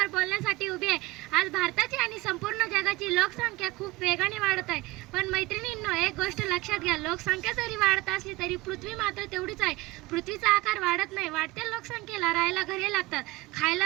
बोलण्यासाठी उभी आहे। आज भारताची आणि संपूर्ण जगाची लोकसंख्या खूप वेगाने वाढत आहे। पण मैत्रिणींनो, एक गोष्ट लक्षात घ्या, लोकसंख्या जरी वाढत असली तरी पृथ्वी मात्र तेवढीच आहे। पृथ्वीचा आकार वाढत नाही। वाढत्या लोकसंख्येला राहायला घरे लागतात,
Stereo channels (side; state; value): left; quieter; 20.4 dB